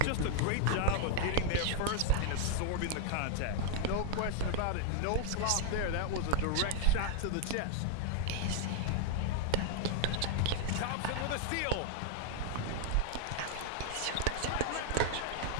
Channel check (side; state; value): both; different; correlation 0.00